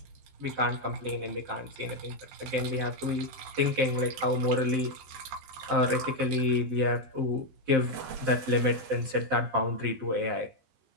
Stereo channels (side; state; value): left; late; 12 ms